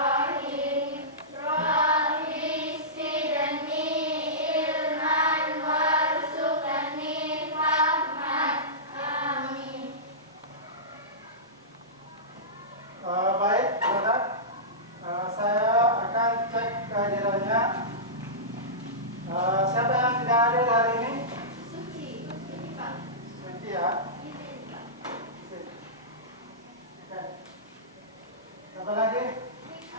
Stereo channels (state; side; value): normal; both; correlation -0.18